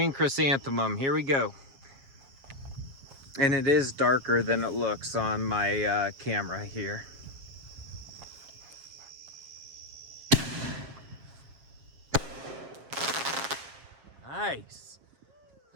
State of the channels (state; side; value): late; left; 7.4 ms